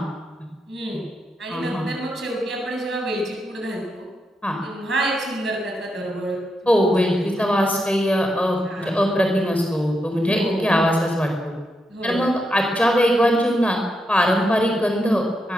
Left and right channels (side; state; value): both; normal; correlation 0.83